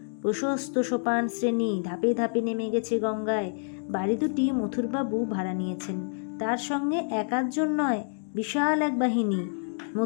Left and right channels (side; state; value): right; silent; digital silence